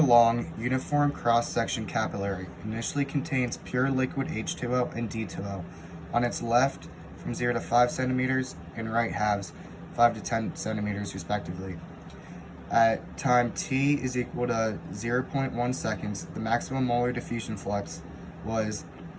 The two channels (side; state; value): both; identical; correlation 1.00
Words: long uniform cross-section capillary initially contains pure liquid H2O and D2O on its left from 0 to 5 centimeters and right halves 5 to 10 centimeters respectively. At time t is equal to 0.1 seconds, the maximum molar diffusion flux was